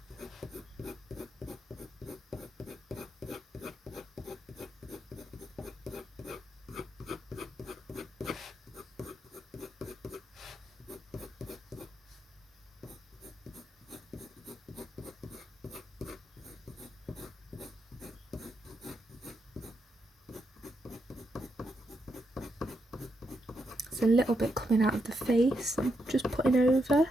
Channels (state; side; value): normal; both; correlation 0.81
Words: A little bit coming out of the face, I'm just putting over.